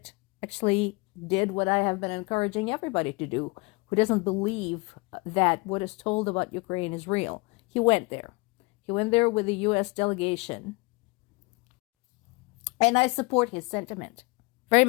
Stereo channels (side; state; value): right; quieter; 26.7 dB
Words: actually did what I have been encouraging everybody to do, who doesn't believe that what is told about Ukraine is real. He went there. He went there with the U.S. delegation. And I support his sentiment very